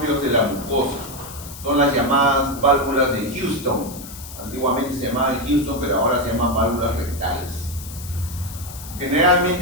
de la mucosa. Son las llamadas válvulas de Houston. Antiguamente se llamaban Houston, pero ahora se llaman válvulas rectales.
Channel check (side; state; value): left; noise; hiss, 14 dB below the sound